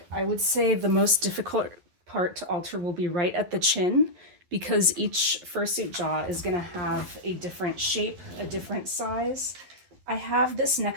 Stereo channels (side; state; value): left; late; 11 ms